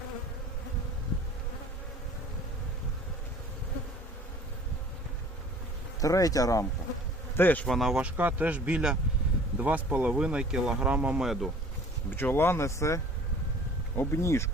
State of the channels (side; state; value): both; normal; correlation 0.49